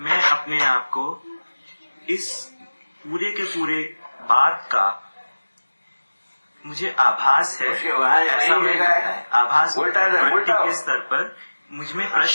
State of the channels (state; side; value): inverted; both; correlation -1.00